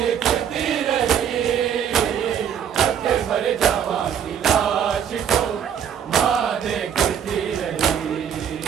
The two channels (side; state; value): left; quieter; 8.5 dB